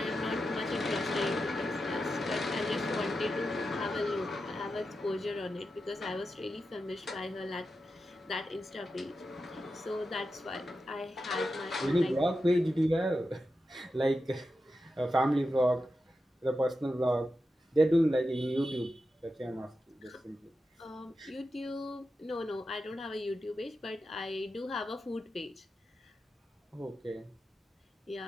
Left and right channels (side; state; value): both; normal; correlation 0.90